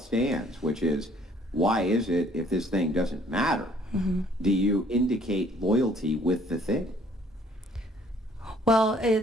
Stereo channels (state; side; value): normal; both; correlation 0.60